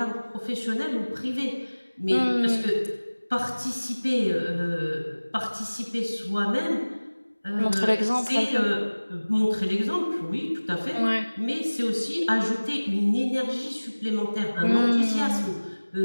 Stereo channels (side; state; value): both; inverted; correlation -1.00